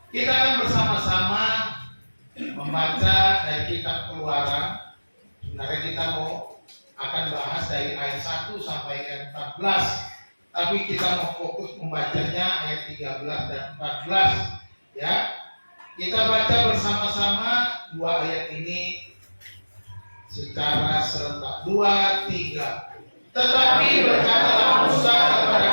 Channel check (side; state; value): both; inverted; correlation -1.00